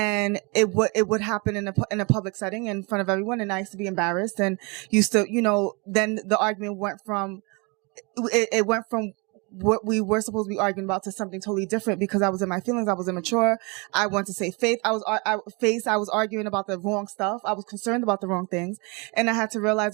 it would happen in a public setting in front of everyone, and I used to be embarrassed, and used to, then the argument went from what we were supposed to be arguing about to something totally different, because I was in my feelings. I was immature. I wanted to say faith. I was arguing about the wrong stuff. I was concerned about the wrong things. And I had to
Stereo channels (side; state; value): left; quieter; 30.3 dB